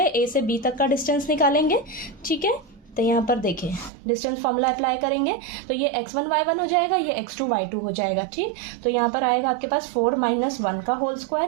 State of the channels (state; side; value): drops out; left; at 3.9 s